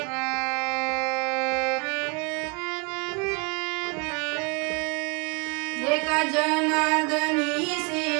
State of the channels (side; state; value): left; quieter; 32.2 dB